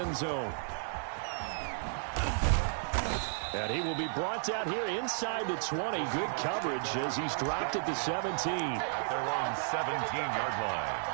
zone. And he will be brought down here inside the 20. Good coverage as he's dropped at the 17. At their own 17-yard line.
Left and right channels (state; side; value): silent; left; 56 dB below the other